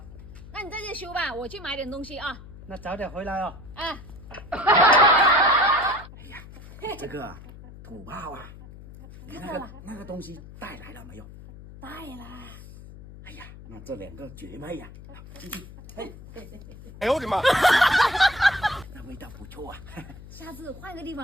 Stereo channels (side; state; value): left; noise; hum, 16 dB below the sound